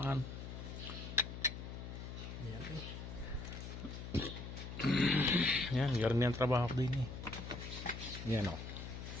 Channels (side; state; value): left; noise; hum, 8 dB below the sound